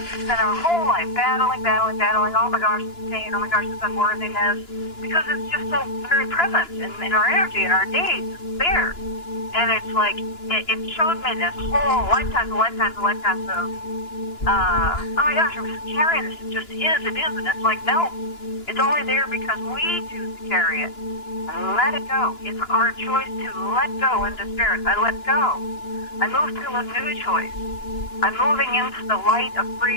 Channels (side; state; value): right; late; 2.9 ms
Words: we spend our whole life battling, oh my gosh, it's pain, oh my gosh, it's unworthiness, because it's just so very present in our energy, in our days, it's there. And it's like, it showed me this whole lifetimes of, oh my gosh, I'm just carrying this, it just is, and it's like, no, it's only there because we choose to carry it. And let it go. It's our choice to let go into spirit. I let go. I move to a new choice. I'm moving into the light of